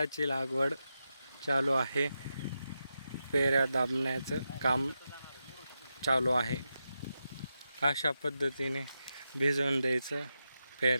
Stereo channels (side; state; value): both; inverted; correlation -0.88